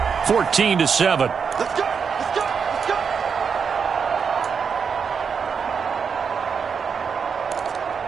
14-7. Let's go.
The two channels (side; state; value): left; quieter; 6.2 dB